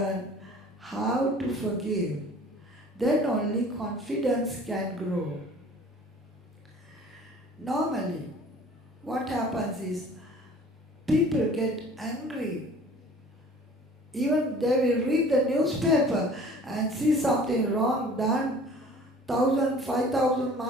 how to forgive. Then only confidence can grow. Normally, what happens is people get angry. Even they will read the newspaper and see something wrong done 1,000, 5,000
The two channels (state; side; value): normal; both; correlation 0.48